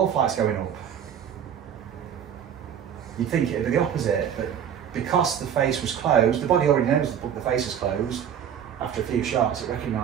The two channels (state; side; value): quieter; left; 8.9 dB